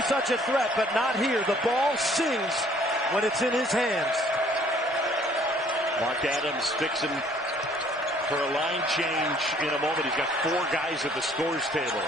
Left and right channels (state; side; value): normal; both; correlation 0.59